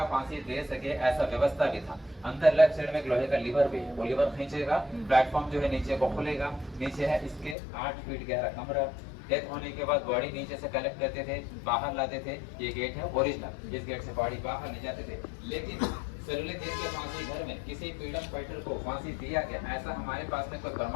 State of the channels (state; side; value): drops out; right; at 7.6 s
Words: फांसी दे सके ऐसा व्यवस्था भी था। अंदर लेफ्ट साइड में एक लोहे का लीवर भी है, वो लीवर खींचेगा, प्लेटफॉर्म जो है नीचे को खुलेगा। नीचे है इसके 8 फीट गहरा कमरा। डेथ होने के बाद बॉडी नीचे से कलेक्ट करते थे, बाहर लाते थे। ये गेट है ओरिजिनल, इस गेट से बॉडी बाहर ले जाते थे। लेकिन सेलुलर जेल के फांसी घर में किसी फ्रीडम फाइटर को फांसी दिया गया ऐसा हमारे पास में कोई